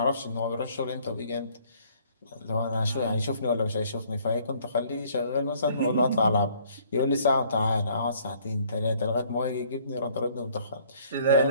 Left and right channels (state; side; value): inverted; both; correlation -0.60